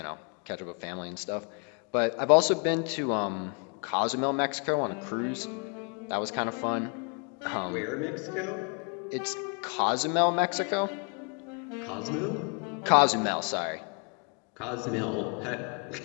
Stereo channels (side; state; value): right; quieter; 39.5 dB